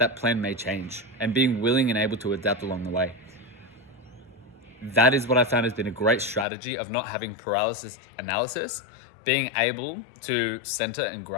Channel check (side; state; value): right; drops out; at 6.5 s